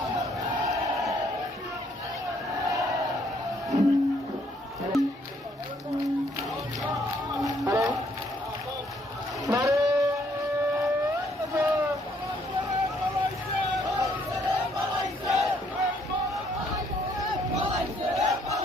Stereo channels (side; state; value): both; normal; correlation 0.68